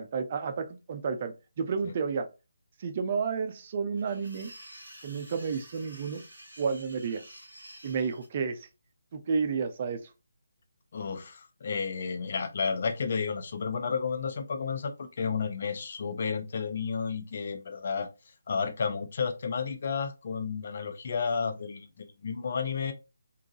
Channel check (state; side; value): inverted; both; correlation -0.73